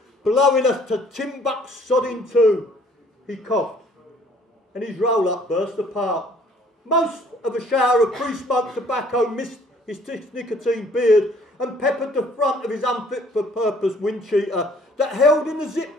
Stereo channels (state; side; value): normal; both; correlation 0.58